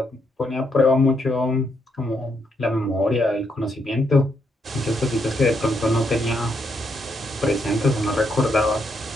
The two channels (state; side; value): normal; both; correlation 0.77